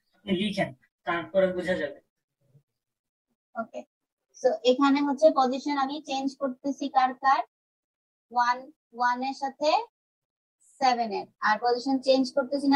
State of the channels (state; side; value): identical; both; correlation 1.00